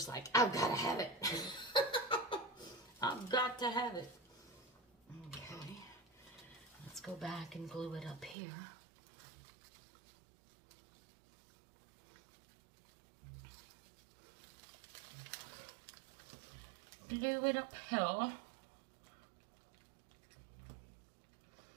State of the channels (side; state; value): left; drops out; at 8.3 s